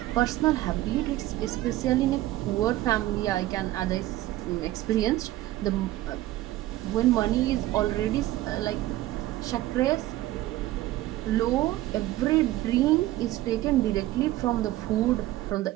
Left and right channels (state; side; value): quieter; left; 15.9 dB